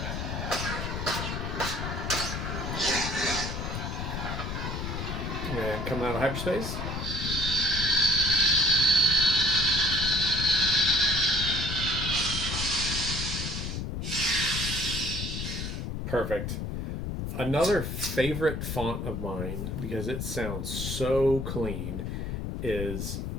And coming out of hyperspace. Perfect. Another favorite font of mine, because it sounds so clean, is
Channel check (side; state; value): left; noise; rumble, 4 dB below the sound